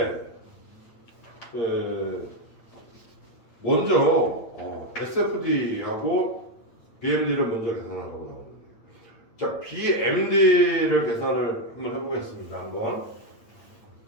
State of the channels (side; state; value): right; late; 8.8 ms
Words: 먼저 SFD하고 BMD를 먼저 계산하고 나오는데, 자, BMD를 계산을 한번 해보겠습니다. 한번